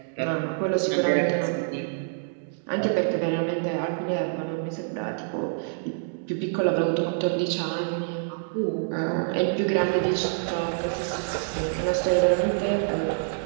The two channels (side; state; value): left; silent; digital silence